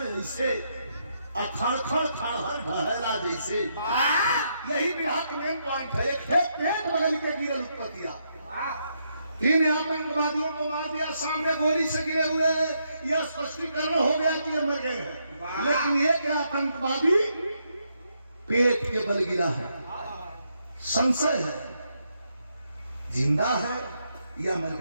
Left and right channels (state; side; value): inverted; both; correlation -0.78